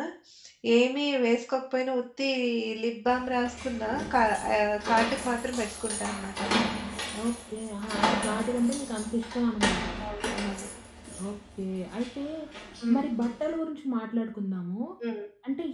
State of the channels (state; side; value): identical; both; correlation 1.00